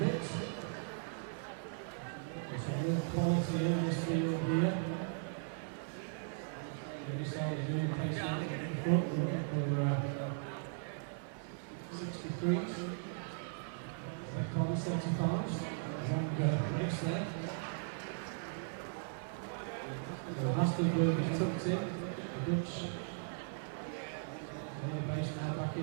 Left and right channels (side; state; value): left; silent; 53 dB below the other